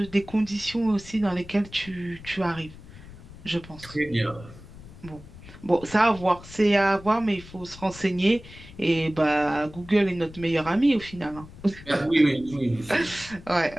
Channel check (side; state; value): left; noise; rumble, 18 dB below the sound